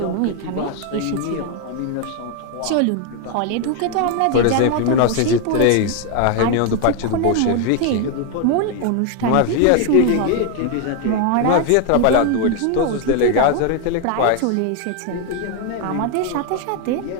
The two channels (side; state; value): both; different; correlation 0.01